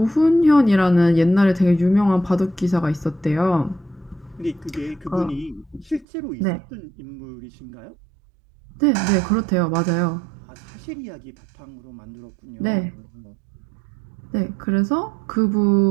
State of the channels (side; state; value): left; drops out; at 6.1 s